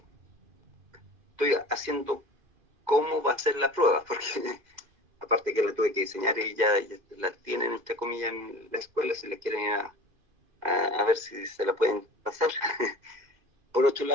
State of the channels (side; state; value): left; late; 2.5 ms